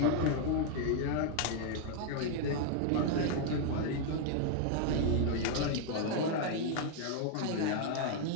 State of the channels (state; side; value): different; both; correlation 0.00